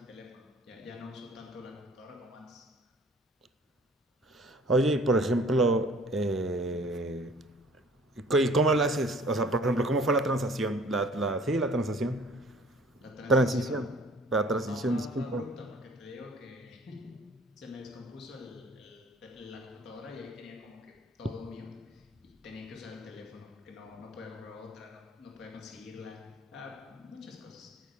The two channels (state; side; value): normal; both; correlation 0.52